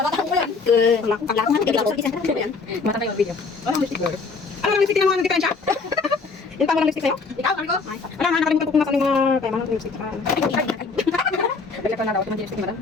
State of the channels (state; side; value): quieter; right; 4.5 dB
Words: ko yan. Paglakan natin, kaya isa na yan. Mata tayo ang video. Ano ang lipstick girl? Ano ang lipstick na mga diferensya? Yung pa mo ng lipstick sa'yo? Ikaw, ano ko? Ano nga, nakalimutan ko kung nasa mga kaya mga lipstick. Balik ko na daw, ito mga lipstick na lang.